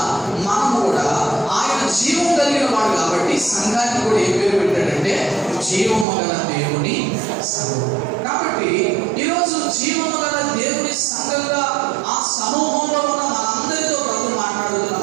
మనం కూడా ఆయన జీవం కలిగిన వాడు కాబట్టి సంఘానికి కూడా ఏ పేరు పెట్టాడంటే జీవము గల దేవుని సంఘం. కాబట్టి ఈరోజు జీవము గల దేవుని సంఘంగా ఆ సమూహంలో ఉన్న మనందరితో ప్రభు మాట్లాడుతున్న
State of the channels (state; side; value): drops out; left; at 6.1 s